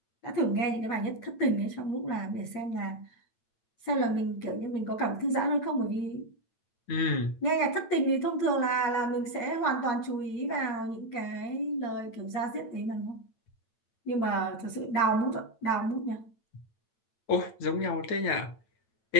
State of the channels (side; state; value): right; late; 8.9 ms